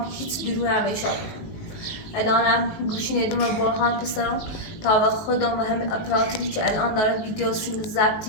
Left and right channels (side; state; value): right; late; 19 ms